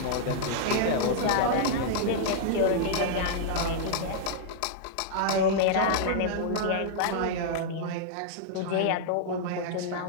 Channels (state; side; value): different; both; correlation -0.01